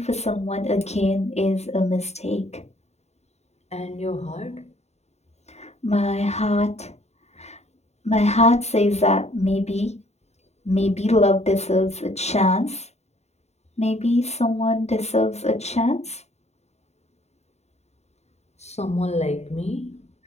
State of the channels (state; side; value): late; right; 0.32 ms